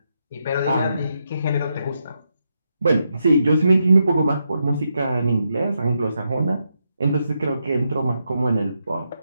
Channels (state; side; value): inverted; both; correlation -0.83